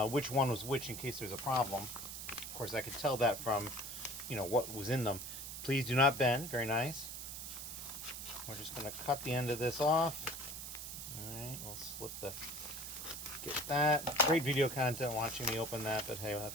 which one was which in case there's a problem. Of course, I could tell that from, what was in them. Please do not bend. Very nice. We're just going to cut the end of this off. All right, we'll get that. Great video content watching me open that, but hey,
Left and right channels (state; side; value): noise; right; hiss, 8 dB below the sound